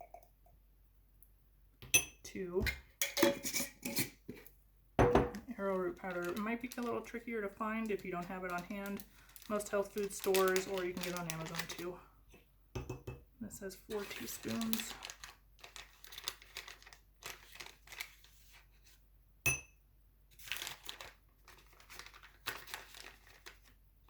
2. Arrowroot powder. It might be a little trickier to find if you don't have it on hand. Most health food stores, or you can get it on Amazon too. This says 4 teaspoons.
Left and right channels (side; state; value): both; identical; correlation 1.00